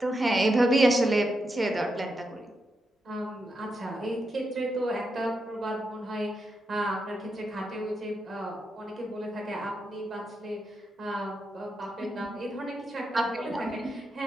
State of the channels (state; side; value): normal; both; correlation 0.85